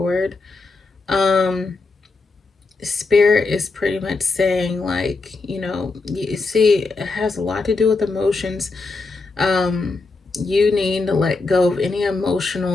Spirit is pretty much saying, like, you see, it has a lot to do with emotions. You need to let go of any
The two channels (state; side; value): quieter; right; 3.7 dB